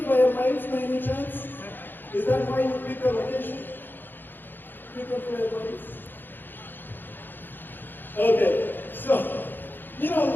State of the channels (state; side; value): late; right; 0.095 ms